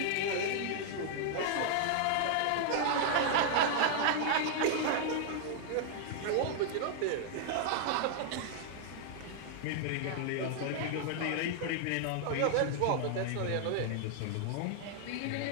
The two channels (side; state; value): both; different; correlation -0.01